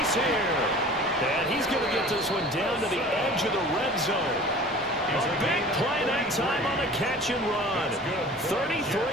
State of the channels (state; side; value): normal; both; correlation 0.43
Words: here. And he's going to get this one down to the edge of the red zone. A big play that time on a catch and run.